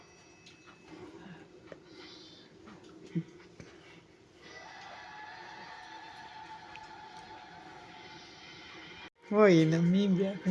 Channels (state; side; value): identical; both; correlation 1.00